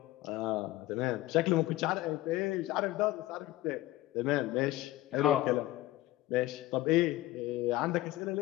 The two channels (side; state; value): right; quieter; 16.7 dB